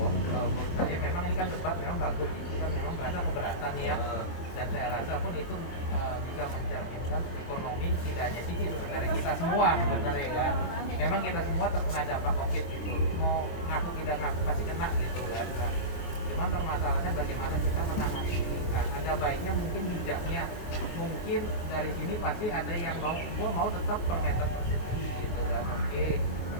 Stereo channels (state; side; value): late; right; 23 ms